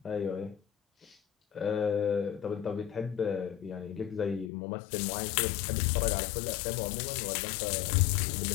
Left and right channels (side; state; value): right; drops out; at 4.5 s